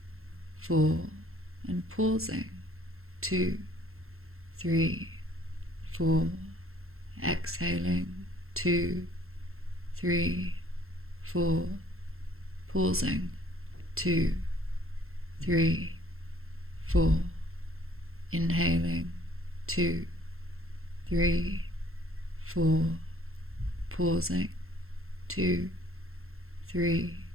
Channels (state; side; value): late; left; 0.62 ms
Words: 4. And pausing, 2, 3, 4. Exhaling, 2, 3, 4. Pausing, 2, 3, 4. Inhaling, 2, 3, 4. Pausing, 2, 3,